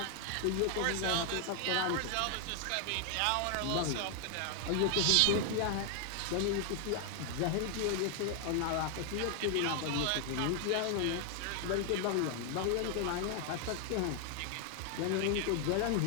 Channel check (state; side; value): different; both; correlation 0.00